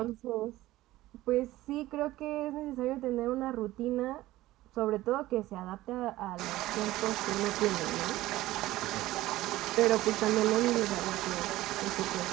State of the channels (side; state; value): left; quieter; 16.6 dB